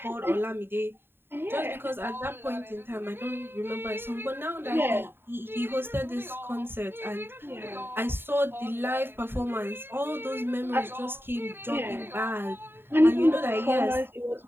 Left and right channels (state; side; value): late; left; 0.11 ms